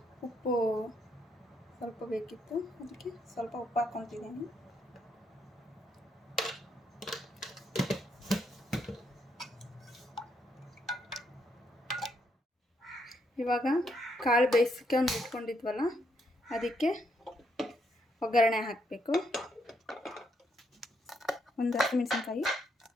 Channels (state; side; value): normal; both; correlation 0.76